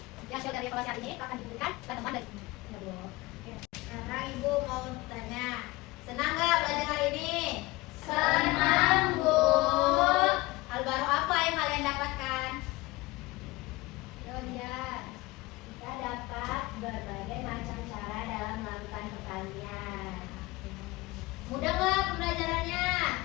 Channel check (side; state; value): right; quieter; 21.3 dB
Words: hasil dari evaluasi hari ini akan diberikan ke teman dari ya, Bu. Oke. Sekarang Ibu mau tanya, senang nggak belajar hari ini? Senang, Bu. Hal baru apa yang kalian dapatkan? Kemudian kita dapat berbagai macam cara dalam melakukan pertanian. Mudah nggak pembelajarannya?